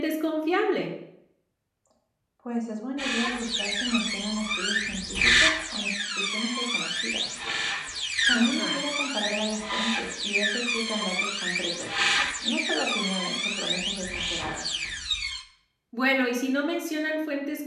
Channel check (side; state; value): both; identical; correlation 1.00